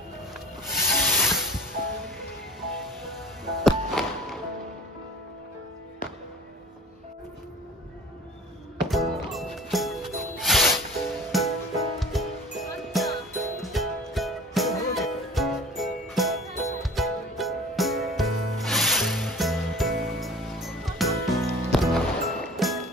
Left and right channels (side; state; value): both; normal; correlation 0.43